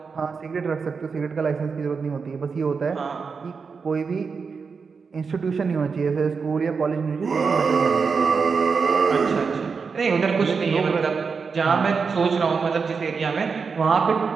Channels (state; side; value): quieter; left; 5.3 dB